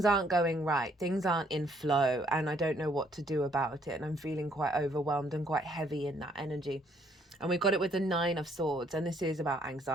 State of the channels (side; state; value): both; normal; correlation 0.67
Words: aren't going right, things aren't in flow, and I don't know what to do about it, and I'm feeling quite overwhelmed and quite heavy in that energy. And we've got it with the 9 of Swords, and this is about